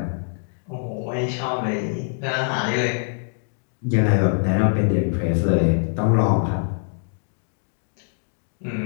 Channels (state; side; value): silent; right; 63 dB below the other